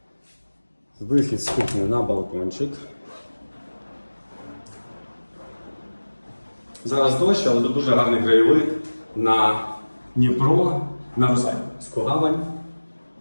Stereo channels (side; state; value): both; inverted; correlation -1.00